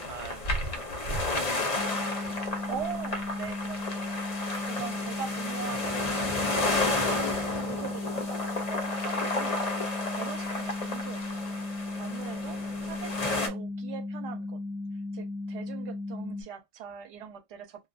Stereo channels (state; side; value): late; left; 1.6 ms